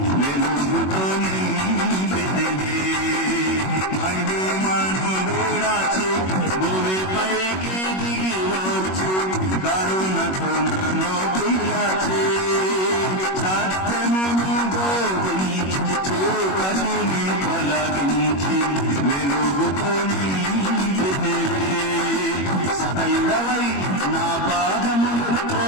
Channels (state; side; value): late; right; 21 ms